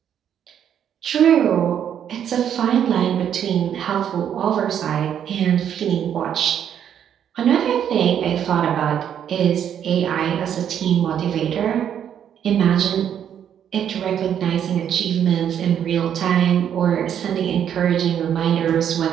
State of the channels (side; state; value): left; quieter; 9.2 dB